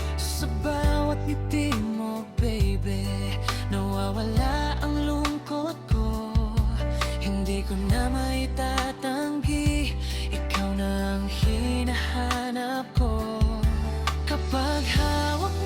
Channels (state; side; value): identical; both; correlation 1.00